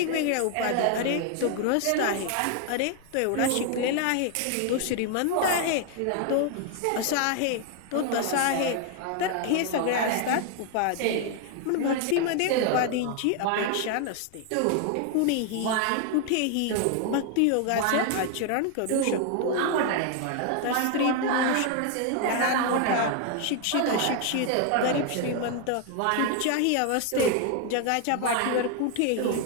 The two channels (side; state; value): both; different; correlation 0.00